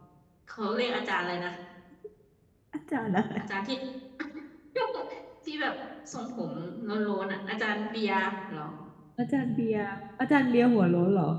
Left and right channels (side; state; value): both; identical; correlation 1.00